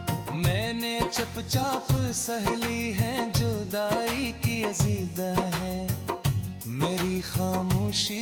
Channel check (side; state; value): both; identical; correlation 1.00